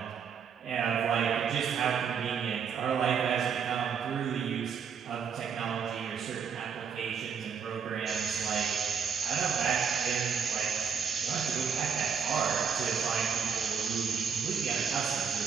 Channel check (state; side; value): quieter; left; 6.8 dB